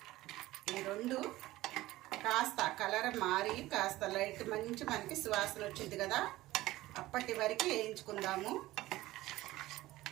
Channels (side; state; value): left; quieter; 17.1 dB